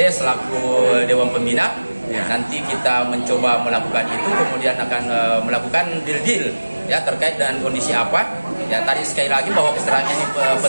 selaku Dewan Pembina. Nanti kita mencoba melakukan itu, kemudian akan melakukan deal-deal ya terkait dengan kondisi apa. Ya, tadi sekali lagi bahwa kesetaraan ini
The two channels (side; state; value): both; inverted; correlation -1.00